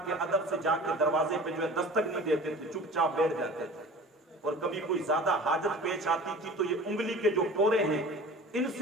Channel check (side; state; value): both; normal; correlation 0.40